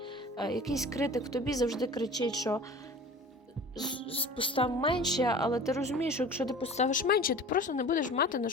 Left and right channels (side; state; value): both; normal; correlation 0.41